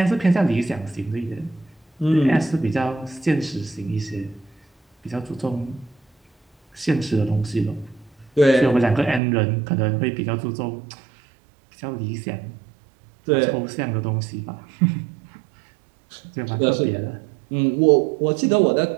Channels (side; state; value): left; drops out; at 9.2 s